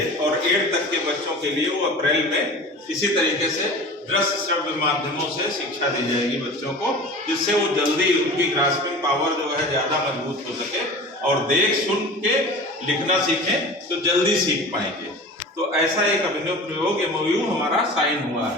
और 8th तक के बच्चों के लिए वो अप्रैल में इसी तरीके से दृश्य श्रव्य माध्यमों से शिक्षा दी जाएगी बच्चों को, जिससे वो जल्दी, उनकी ग्रास्पिंग पावर जो है ज़्यादा मजबूत हो सके और देख सुन के लिखना सीखें तो जल्दी सीख पाएंगे। तो ऐसा एक अभिनव प्रयोग MOU हमारा साइन हुआ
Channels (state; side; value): normal; both; correlation 0.37